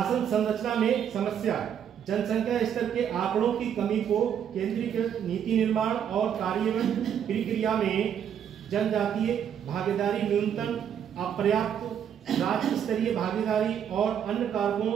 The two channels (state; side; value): quieter; left; 8.8 dB